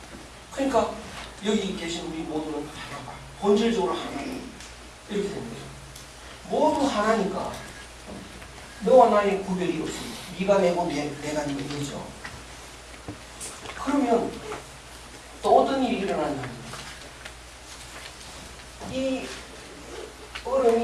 그러니까 여기 계신 우리 모두는 하나가 본질적으로 하나 이렇게 되는 거죠. 모두 하나니까 너와 나의 구별이 없습니다. 네가 내고 내가 네죠. 그러면 또 어떤 일이 일어나냐면 이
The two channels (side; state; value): both; identical; correlation 1.00